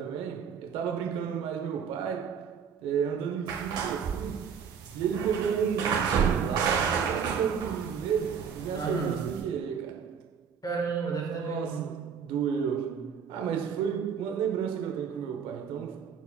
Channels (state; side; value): quieter; left; 7.0 dB